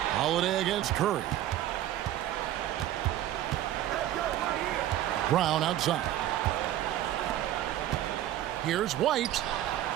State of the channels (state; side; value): quieter; left; 13.0 dB